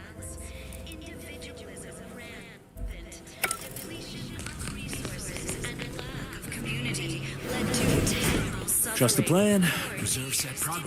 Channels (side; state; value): both; identical; correlation 1.00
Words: Trust the plan, preserve set